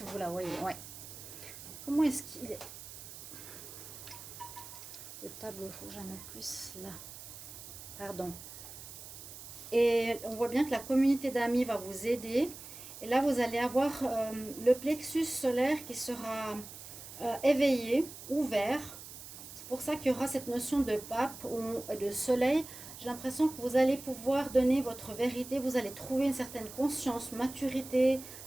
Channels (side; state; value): right; noise; hiss, 13 dB below the sound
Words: vous la voyez. Ouais. Comment est-ce qu'il est? Le tableau, il faut que j'en mette plus là. Pardon. Et on voit bien que la communauté d'amis va vous aider. Et là, vous allez avoir le plexus solaire qui sera éveillé, ouvert. C'est pour ça qu'il y aura cette notion de pape ou de soleil. J'ai l'impression que vous allez pouvoir donner votre vérité. Vous allez trouver une certaine conscience, maturité